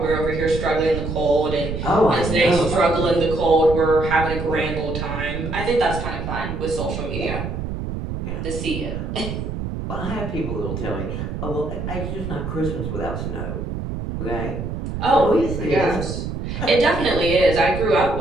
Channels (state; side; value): noise; right; rumble, 5 dB below the sound